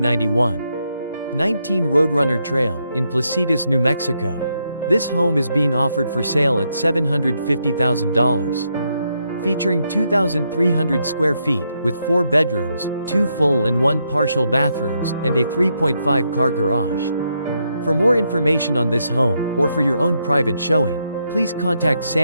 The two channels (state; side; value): inverted; both; correlation -0.79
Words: 19 Roadrunner Trail, in Placitas, New Mexico. This home is being offered for sale at $750,000. Featuring 2,300 square feet, with 4 bedrooms, 2 full and 1 partial bathrooms, and a 3.5 car garage. For more information on this home, or for your own private showing, please contact